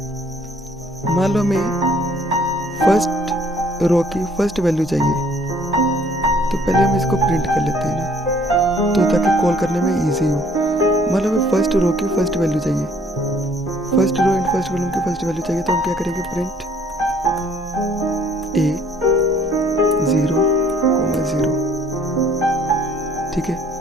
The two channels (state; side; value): normal; both; correlation 0.60